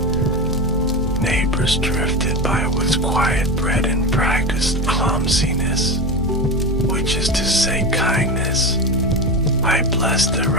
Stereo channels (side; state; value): both; normal; correlation 0.20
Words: Neighbors drifted by with quiet bread and practiced clumsiness, which is to say kindness. I blessed their